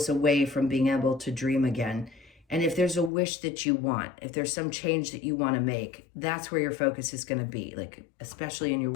away from being able to dream again. And if there's a wish that you want, if there's some change that you want to make, that's where your focus is going to be, like especially in your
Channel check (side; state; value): right; drops out; at 3.1 s